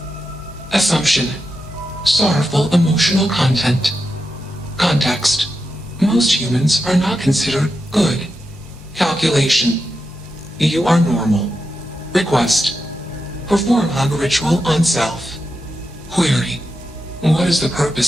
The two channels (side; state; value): both; normal; correlation 0.87